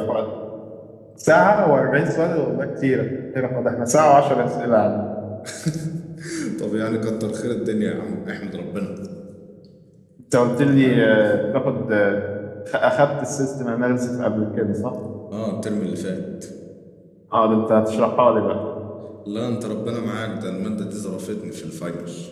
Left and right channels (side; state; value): both; identical; correlation 1.00